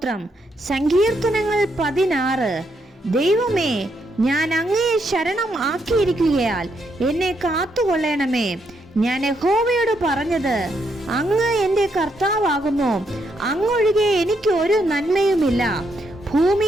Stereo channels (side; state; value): both; normal; correlation 0.77